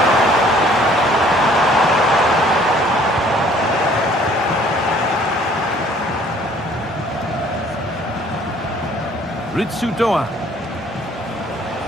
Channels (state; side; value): normal; both; correlation 0.57